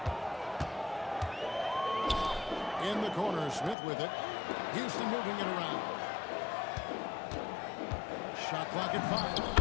In the corner, Smith with it. Houston moving it around. Shot clock at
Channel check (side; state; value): right; drops out; at 3.8 s